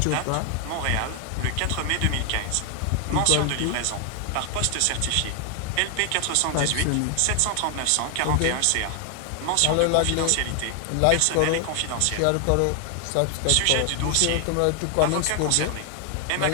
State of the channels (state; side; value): different; both; correlation 0.00